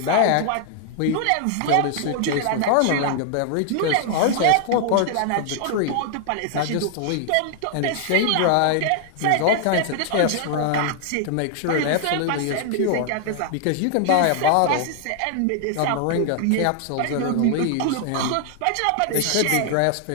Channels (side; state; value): both; different; correlation 0.00